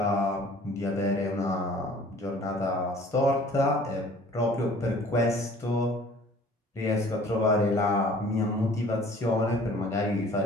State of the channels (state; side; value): normal; both; correlation 0.51